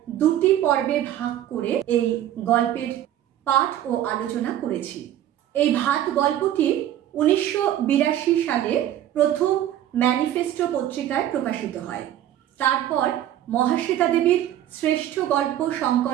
দুটি পর্বে ভাগ করে এই গল্পের পাঠ ও আলোচনা করেছি। এই ভাত গল্পটি 1982 সালে প্রথম ম্যানিফেস্টো পত্রিকায় প্রকাশিত হয়। তারপর মহাশ্বেতা দেবীর শ্রেষ্ঠ গল্প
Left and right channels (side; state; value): left; quieter; 12.0 dB